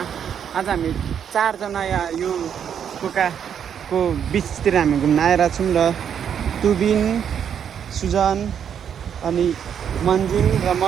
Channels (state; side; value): quieter; left; 8.3 dB